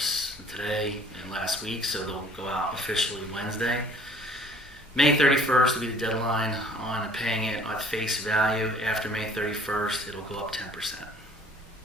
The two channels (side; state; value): both; normal; correlation 0.54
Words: today and last week, so they'll go out officially Wednesday. May 31st will be the deadline on paying it at face value. After May 31st, it'll go up 10%,